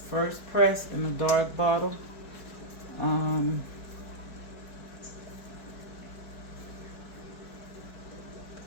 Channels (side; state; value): right; late; 4.6 ms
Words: First press in a dark bottle.